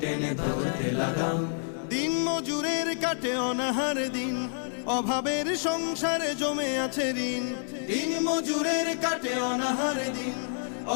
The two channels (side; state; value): right; silent; digital silence